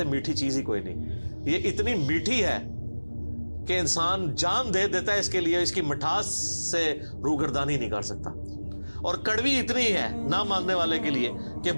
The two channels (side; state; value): both; inverted; correlation -1.00